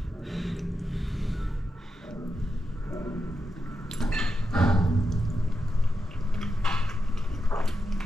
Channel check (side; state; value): both; normal; correlation 0.88